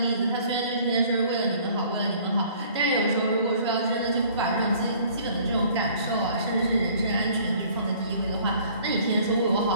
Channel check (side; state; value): both; inverted; correlation -0.55